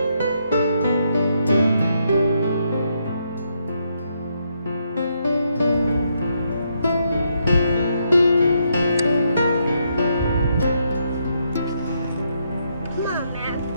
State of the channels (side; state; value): both; inverted; correlation -0.77